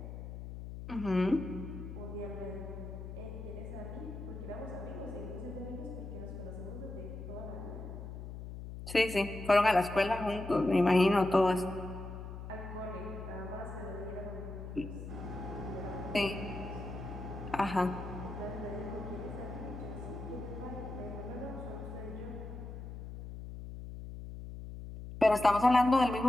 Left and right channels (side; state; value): left; noise; hum, 9 dB below the sound